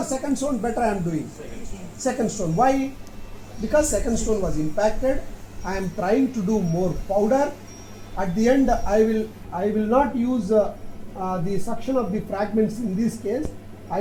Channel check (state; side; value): identical; both; correlation 1.00